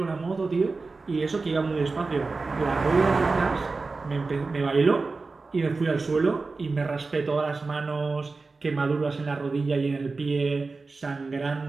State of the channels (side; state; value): left; quieter; 3.9 dB